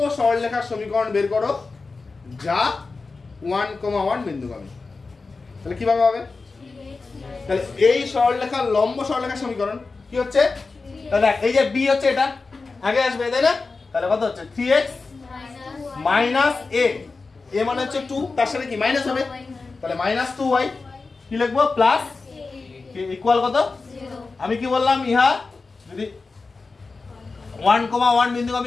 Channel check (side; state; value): right; quieter; 4.0 dB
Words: সরলরেখার সমীকরণ বের করো যা 1,1 বিন্দুগামী। তাহলে কিভাবে হবে, তাহলে এই সরলরেখার লম্ব সরলরেখার সমীকরণ কি হচ্ছে, তাহলে এই যে b হচ্ছে এটা আগে আসবে তাই না, তাহলে কত হচ্ছে 3x মাইনাস a, a মানে হচ্ছে 2, তার সাথে কি মাইনাস হবে, তাহলে -2y, কি লিখবো, প্লাস ইকুয়াল কত, আমি কি বললাম, ইহা যদি 1,1